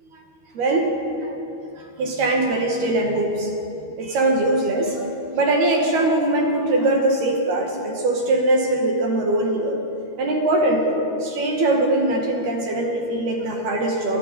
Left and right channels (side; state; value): left; late; 13 ms